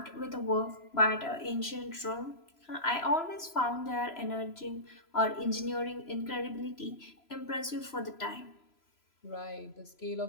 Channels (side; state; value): right; late; 3.0 ms